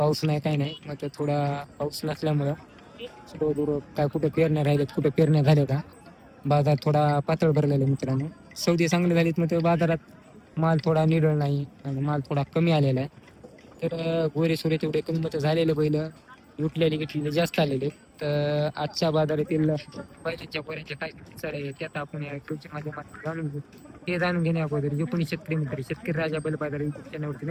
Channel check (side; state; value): both; identical; correlation 1.00